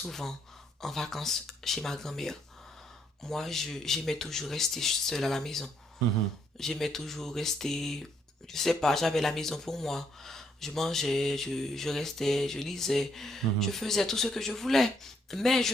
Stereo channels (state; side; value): normal; both; correlation 0.72